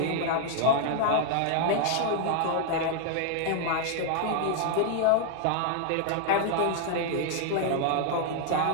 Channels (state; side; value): different; both; correlation 0.00